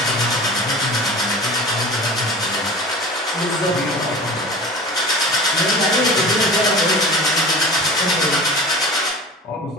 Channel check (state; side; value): normal; both; correlation 0.36